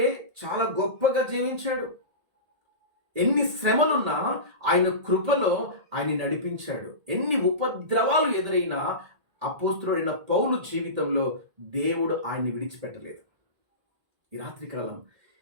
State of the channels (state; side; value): late; left; 1.8 ms